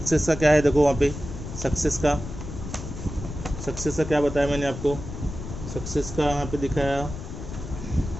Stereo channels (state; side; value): noise; left; rumble, 9 dB below the sound